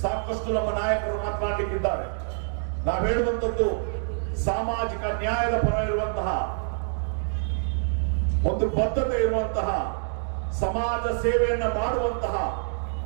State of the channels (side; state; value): left; silent; digital silence